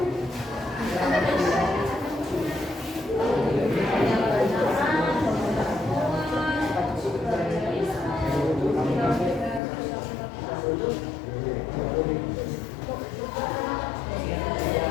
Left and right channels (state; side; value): drops out; right; at 9.6 s